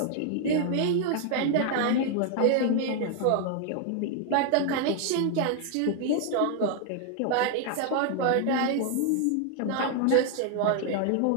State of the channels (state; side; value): different; both; correlation 0.00